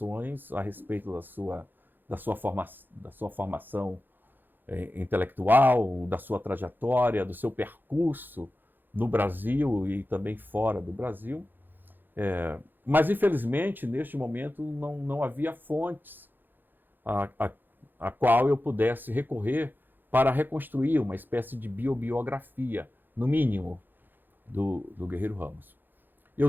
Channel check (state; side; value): late; left; 0.091 ms